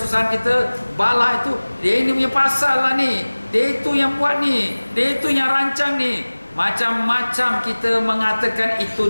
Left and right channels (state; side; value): inverted; both; correlation -1.00